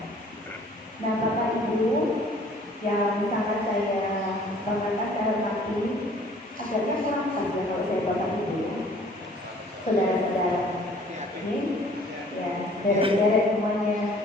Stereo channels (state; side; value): normal; both; correlation 0.54